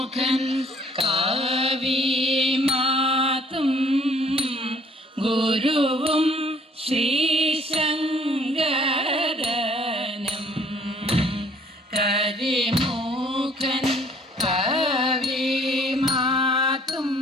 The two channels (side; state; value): both; normal; correlation 0.58